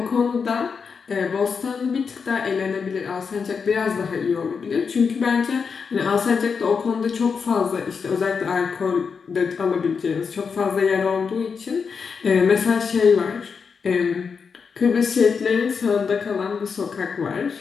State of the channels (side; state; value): right; quieter; 5.7 dB